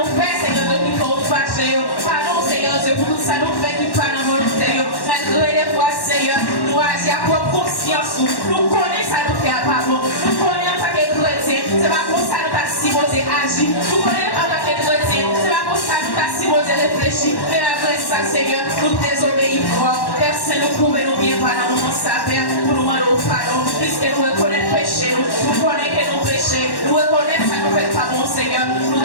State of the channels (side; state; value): right; late; 1.1 ms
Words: fait, Seigneur Dieu, qui faut fâcher, pardon, Seigneur Dieu, pour tout ça nous fait, qui pas dans volonté, malgré les fois, Seigneur, nous agir à propre conscience, nous connaissons ça nous fait à part bon, nous connaissons en tant que chrétien, c'est pas pour ça nous pas supposé agir, nous connaissons en tant que chrétien, c'est pas pour ça nous pas supposé réfléchir, mais après ça, Seigneur, nous désobéissons, personne nous pouvait nous bien par dans mon sapin, pour nous demander pardon, puisque nous reconnaissons péché, nous connaissons que nous péchons, nous reconnaissons ça nous fait pas bon, Seigneur,